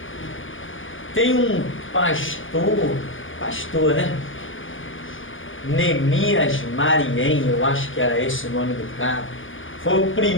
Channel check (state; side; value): late; right; 0.58 ms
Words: Tem um pastor, né? Neemias Mariem, eu acho que era esse o nome do cara. Foi o